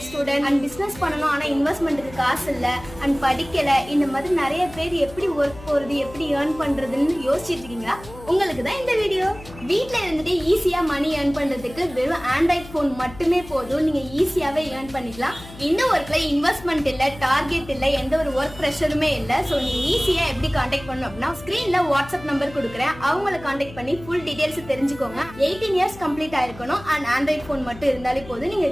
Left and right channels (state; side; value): noise; left; hum, 17 dB below the sound